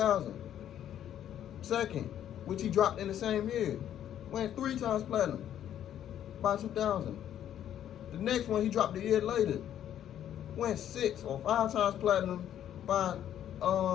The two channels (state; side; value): quieter; right; 10.7 dB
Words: Second, which he dropped in the same year, went 3 times platinum by 2000. The next one he dropped a year later, went 6 or 5 times platinum by